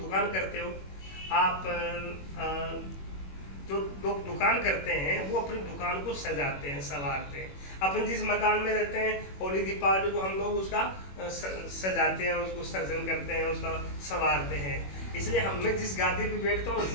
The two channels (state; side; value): late; right; 21 ms